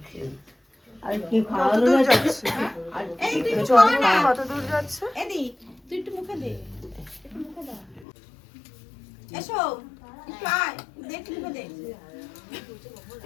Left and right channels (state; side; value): drops out; right; at 8.1 s